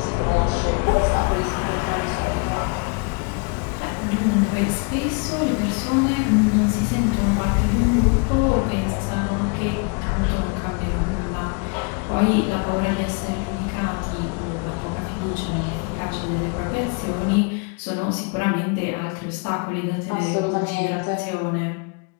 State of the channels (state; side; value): quieter; right; 33.2 dB